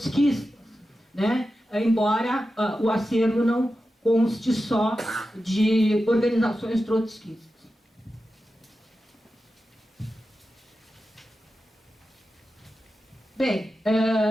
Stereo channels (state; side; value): normal; both; correlation 0.92